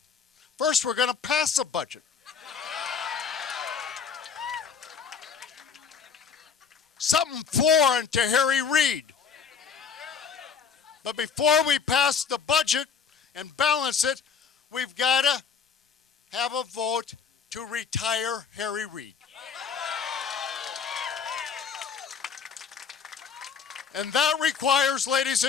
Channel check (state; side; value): quieter; right; 6.4 dB